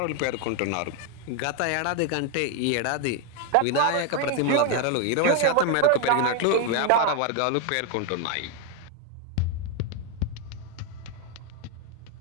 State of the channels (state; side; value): different; both; correlation 0.01